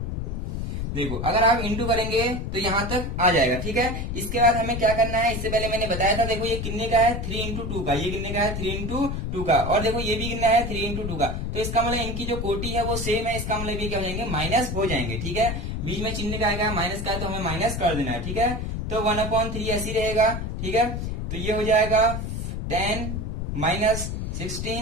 देखो अगर आप इंटू करेंगे तो यहां तक आ जाएगा, ठीक है। इसके बाद हमें क्या करना है, इससे पहले मैंने बताया था, देखो ये कितने का है, 3 इंटू 2 का, ये कितने का है, 3 इंटू 2 का, और देखो ये भी कितना है, 3 इंटू 2 का। तो इसका मतलब इनकी जो कोटि है वो सेम है, इसका मतलब ये क्या हो जाएंगे, माइनस हो जाएंगे, ठीक है। बीच में चिन्ह का आएगा माइनस का, तो हमें माइनस कर देना है, ठीक है। तो 1/3 ऐसी रहेगा, ठीक है। तो ये हो जाएगा 10 माइनस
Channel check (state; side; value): noise; left; rumble, 4 dB below the sound